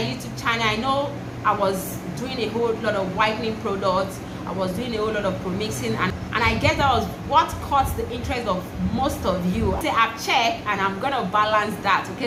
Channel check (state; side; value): identical; both; correlation 1.00